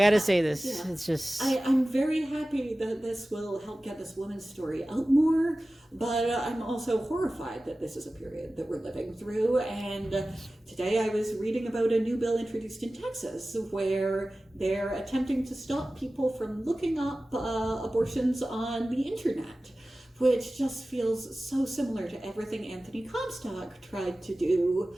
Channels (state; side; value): normal; both; correlation 0.96